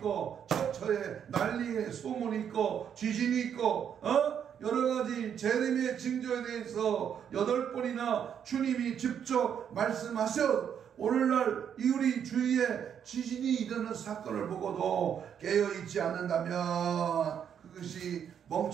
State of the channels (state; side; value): quieter; left; 8.4 dB